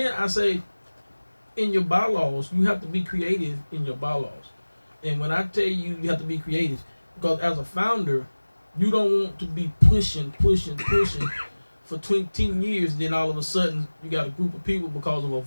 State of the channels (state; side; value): inverted; both; correlation -1.00